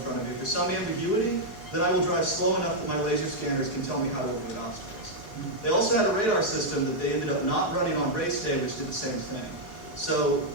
of me, if there's some ambiguity, then I will drive slow enough that my laser scanners can tell me how to avoid obstacles. They also had a radar system that they ended up not running on race day, which did the same thing. So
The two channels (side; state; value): right; late; 4.7 ms